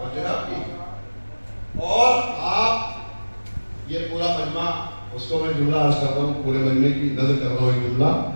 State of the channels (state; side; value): inverted; both; correlation -1.00